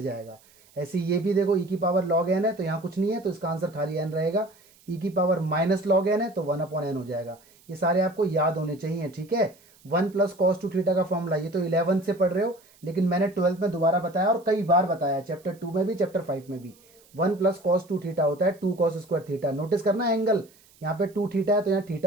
जाएगा। ऐसे ये भी देखो e⁻log n है तो यहाँ कुछ नहीं है, तो इसका आंसर खाली n रहेगा। e⁻−log n है तो 1/n हो जाएगा। ये सारे आपको याद होने चाहिए, ठीक है। 1 + cos 2 थीटा का फॉर्मूला, ये तो 11th से पढ़ रहे हो, लेकिन मैंने 12th में दोबारा बताया और कई बार बताया, चैप्टर 2 में भी चैप्टर 5 में भी। 1 + cos 2 थीटा होता है 2 cos स्क्वायर थीटा। नोटिस करना एंगल, यहाँ पे 2 थीटा है तो यहाँ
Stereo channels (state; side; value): noise; right; hiss, 29 dB below the sound